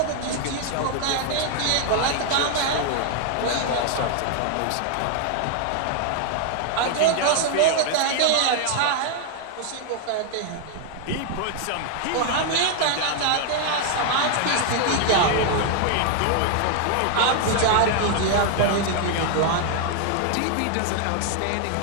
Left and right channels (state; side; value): different; both; correlation 0.00